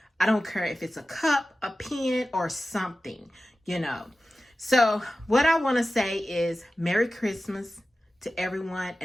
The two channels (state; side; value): normal; both; correlation 0.95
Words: don't care if it's a cup, a pen, or something, So what I want to say is Merry Christmas to everyone,